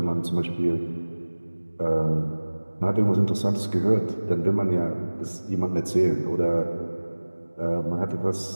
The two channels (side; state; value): both; inverted; correlation -1.00